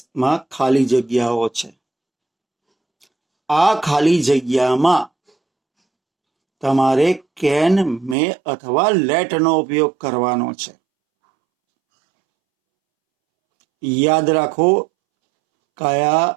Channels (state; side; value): drops out; left; at 8.2 s